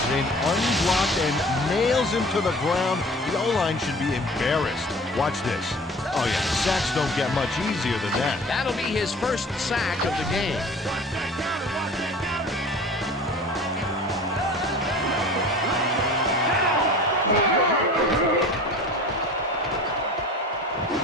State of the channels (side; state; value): both; normal; correlation 0.42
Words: in unblocked and nails him to the ground. The O-line should be embarrassed. Watch this. Oh, yeah, sacks don't get much easier than that. That'll be his first sack of the game.